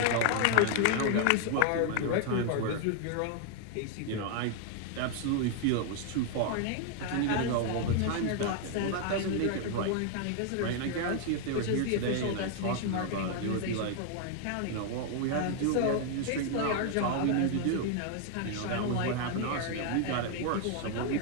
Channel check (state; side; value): different; both; correlation 0.00